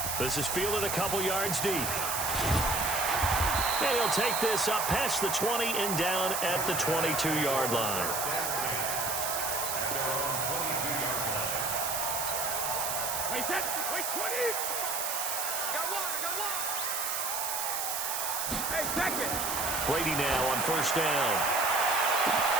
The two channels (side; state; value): right; noise; hiss, 1 dB below the sound